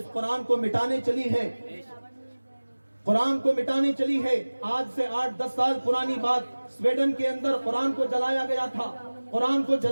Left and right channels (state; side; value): inverted; both; correlation -1.00